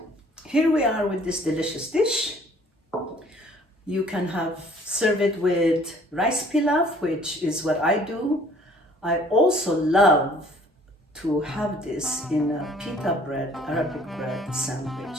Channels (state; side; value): normal; both; correlation 0.56